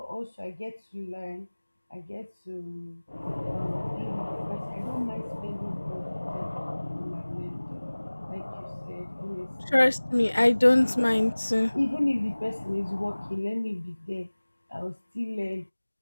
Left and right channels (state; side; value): inverted; both; correlation -1.00